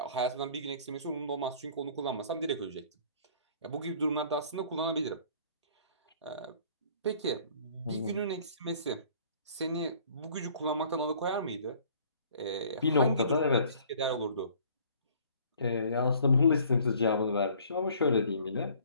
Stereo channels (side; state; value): both; inverted; correlation -0.55